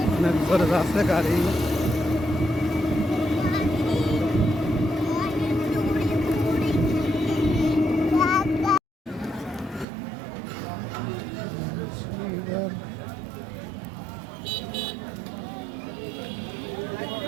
অনেক বড় রাস্তা গাড়ি।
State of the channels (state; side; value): drops out; left; at 9.9 s